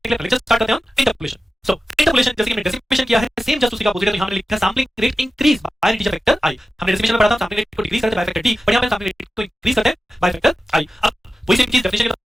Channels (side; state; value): both; normal; correlation 0.93